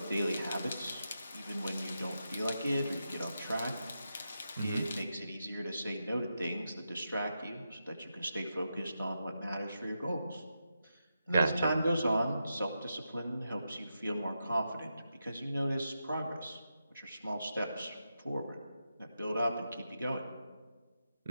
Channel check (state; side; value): inverted; both; correlation -0.87